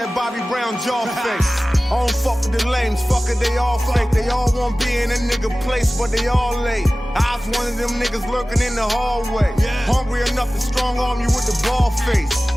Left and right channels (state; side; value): normal; both; correlation 0.97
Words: that Bobby Brown jaw face. I don't fuck with the lames, fuck it, they all fake. They all want be in a nigga place, but they all late. I was one of them niggas lurking in the hallway. Hungry enough to strong arm you with the ball face.